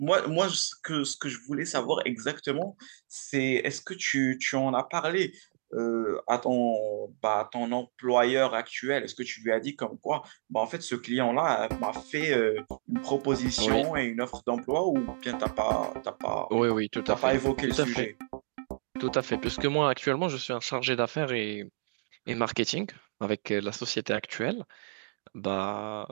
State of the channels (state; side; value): silent; left; digital silence